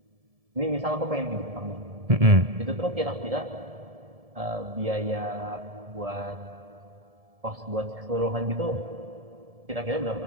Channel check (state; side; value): late; left; 1.7 ms